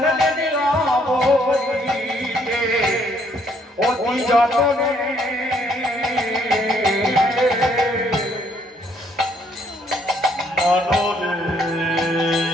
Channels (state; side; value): normal; both; correlation 0.68